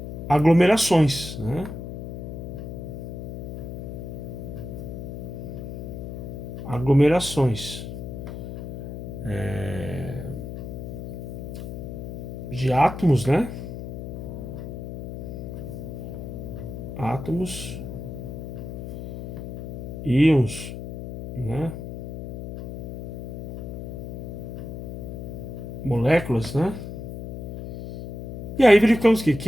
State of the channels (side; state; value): left; noise; hum, 8 dB below the sound